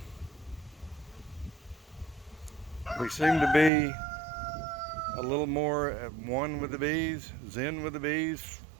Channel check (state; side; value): drops out; left; at 3.7 s